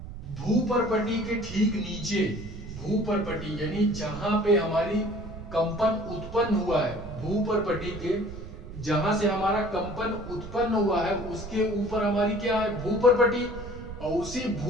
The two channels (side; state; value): right; noise; rumble, 11 dB below the sound